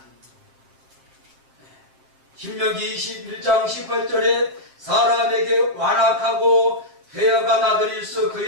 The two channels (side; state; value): left; late; 7.6 ms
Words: 신명기 21장 18절에 사람에게 완악하고 회역한 아들이 있어